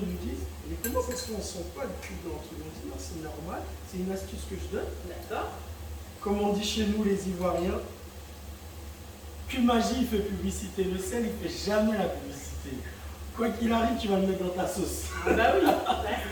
nous disent, mais comment ça se fait, on ne sent pas le cube dans le truc? On dit non, c'est normal, c'est une astuce que je donne. D'accord. Comme on dit chez nous les Ivoiriens, que magie il fait publicité, le sel il fait jamais la publicité. Quoi qu'il arrive, tu vas le mettre dans ta sauce. Ah bah oui, là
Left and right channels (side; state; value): both; identical; correlation 1.00